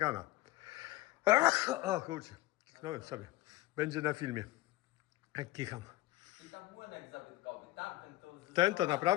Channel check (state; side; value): quieter; right; 17.5 dB